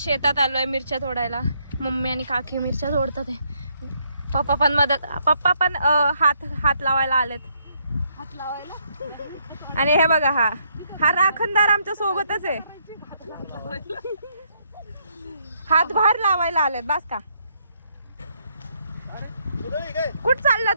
आलोय मिरच्या तोडायला. मम्मी आणि काकी मिरच्या तोडतात आहे. पप्पा पण मदत, पप्पा पण हात लावायला आलेत. आणि हे बघा हा राखणदार आमच्या सोबतच आहे. हातभार लावायला आलेत. बास का कुठ चालला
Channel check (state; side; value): inverted; both; correlation -0.73